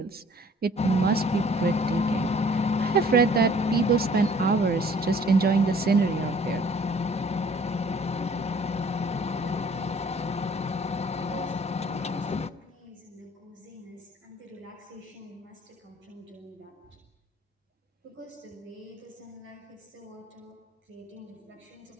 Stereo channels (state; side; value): normal; both; correlation 0.55